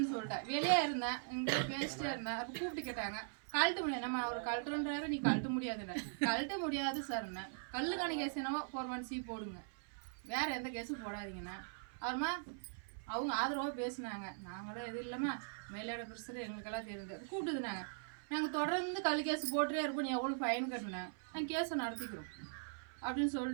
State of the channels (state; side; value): silent; left; 51 dB below the other